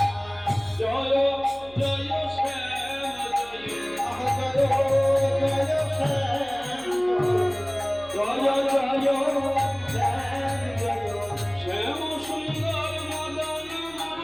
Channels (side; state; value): right; noise; hum, 23 dB below the sound